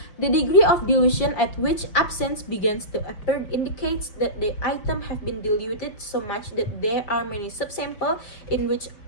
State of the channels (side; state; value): right; late; 5.5 ms